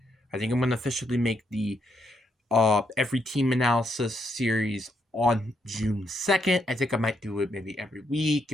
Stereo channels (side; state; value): both; normal; correlation 0.77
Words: I think I'm going to officially make the every team analysis series on June 2nd. I think I might do it maybe every week,